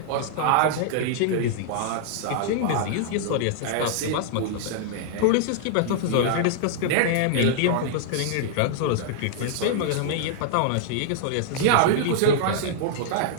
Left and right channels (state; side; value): different; both; correlation -0.01